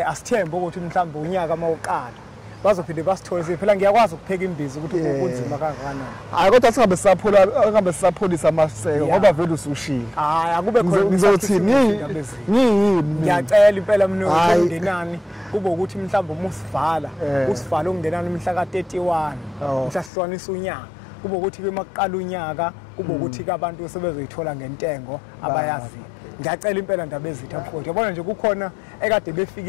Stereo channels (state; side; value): drops out; right; at 20.1 s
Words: asithembe ukuthi mhlawumbe unyaka mawuqala bazophinde basithoze phela ngiyakwazi ukupheka imbizi ukuthi kunzima kangakanani hayi kodwa singabe sisapholisa amaseko ngoba vele usushila hayi akube khona ngizothini ngiyacela impela mina ungenani kube ukuthi mhlawumbe umusivala usivala ungenani mhla ka31 mhla sihlukanisa unyaka kube ukuthi ke makuqala unyaka kube ukuthi ke abantu sebezoyithola ngentengo abayazi ngiyacela impela ndaba ezitha mfowethu yabona nje kukhona ekade